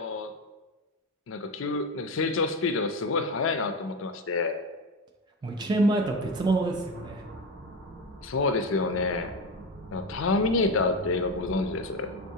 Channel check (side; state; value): both; normal; correlation 0.18